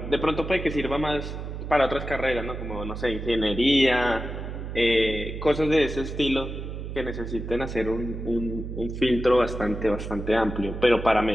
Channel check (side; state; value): right; noise; hum, 7 dB below the sound